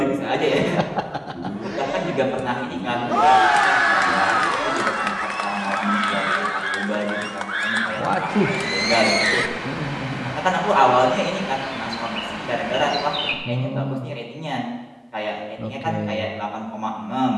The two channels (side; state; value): both; identical; correlation 1.00